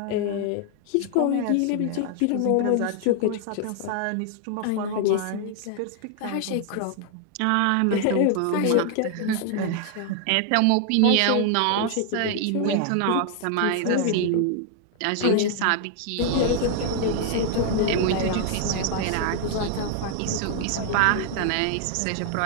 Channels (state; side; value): different; both; correlation 0.00